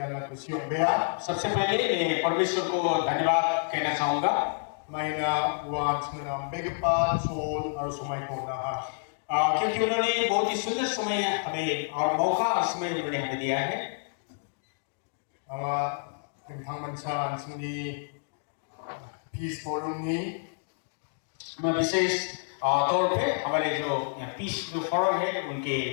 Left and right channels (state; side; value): silent; right; digital silence